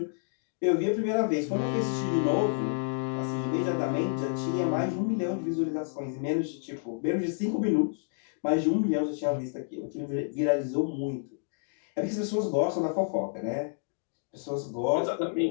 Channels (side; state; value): right; silent; digital silence